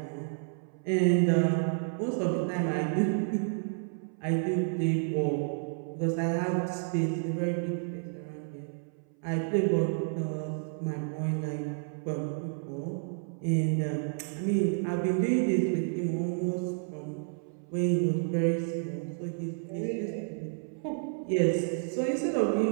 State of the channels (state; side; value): silent; left; 57 dB below the other